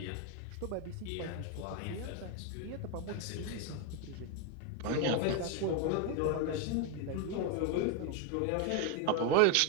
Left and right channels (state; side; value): different; both; correlation 0.02